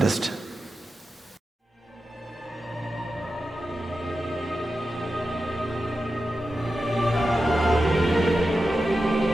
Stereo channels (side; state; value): both; normal; correlation 0.91